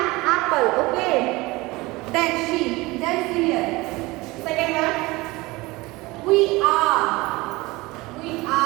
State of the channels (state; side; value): quieter; left; 21.9 dB